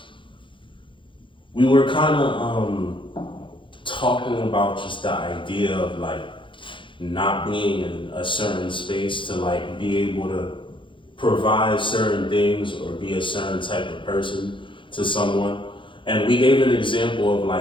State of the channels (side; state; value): right; late; 0.24 ms